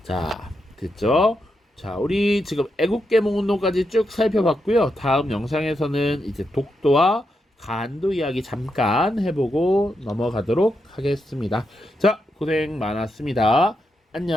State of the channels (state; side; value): normal; both; correlation 0.84